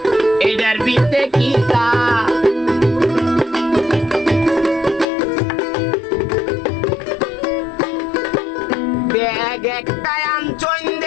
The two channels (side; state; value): right; drops out; at 5.1 s